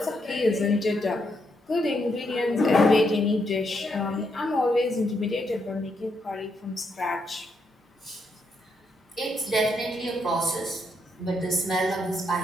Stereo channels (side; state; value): both; normal; correlation 0.79